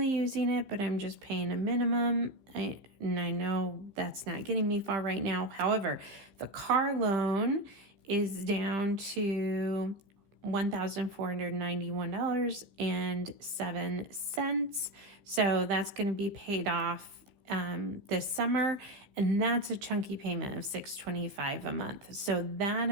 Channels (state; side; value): late; left; 15 ms